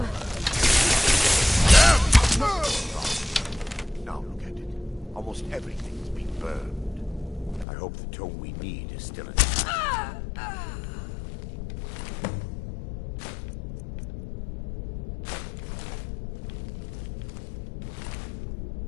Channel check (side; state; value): right; drops out; at 7.7 s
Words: Now look at it. Almost everything's been burned. I hope the tome we need is still intact.